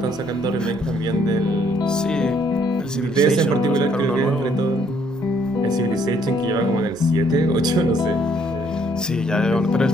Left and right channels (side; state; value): both; normal; correlation 0.66